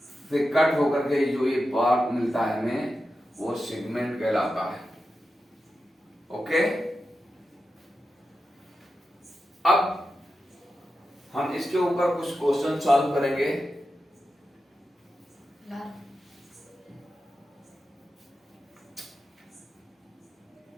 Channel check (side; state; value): both; normal; correlation 0.91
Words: से कट होकर के जो ये पार्ट मिलता है हमें, वो सेगमेंट कहलाता है। ओके, हम इसके ऊपर कुछ क्वेश्चन सॉल्व करेंगे।